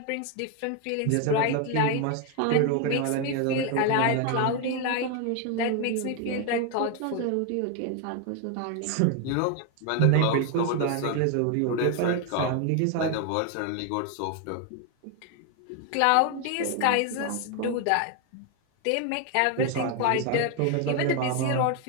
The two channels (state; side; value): different; both; correlation 0.01